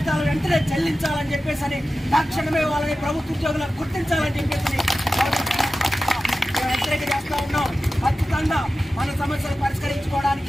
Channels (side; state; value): both; normal; correlation 0.94